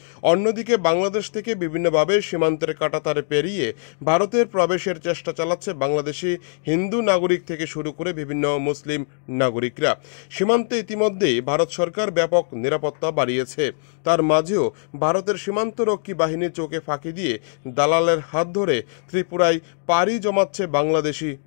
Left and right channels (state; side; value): silent; right; digital silence